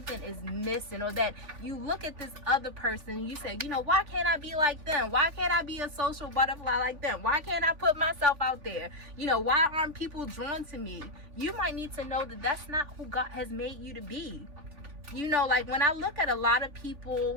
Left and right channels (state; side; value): late; left; 3.4 ms